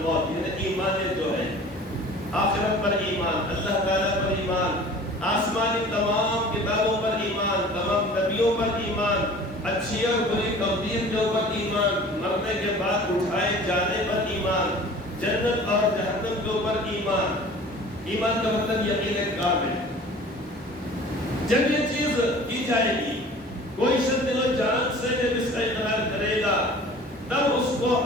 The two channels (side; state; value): both; normal; correlation 0.44